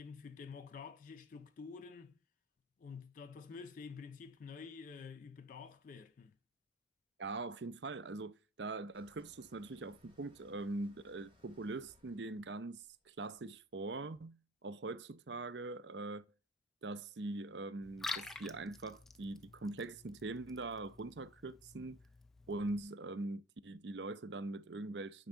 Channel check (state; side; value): normal; both; correlation 0.41